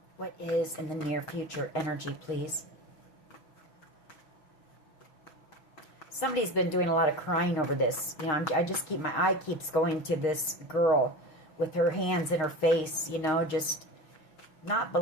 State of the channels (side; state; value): right; late; 6.4 ms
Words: What is in the near future energy, please? Somebody's been doing a lot of crying over this. You know, I just keep, my eye keeps going to this girl with her hands in her face, you know, just not